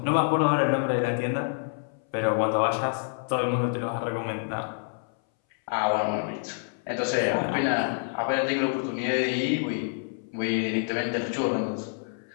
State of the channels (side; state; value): right; silent; 60 dB below the other